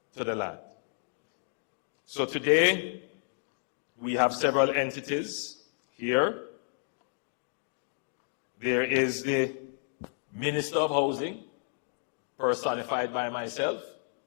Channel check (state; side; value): silent; right; digital silence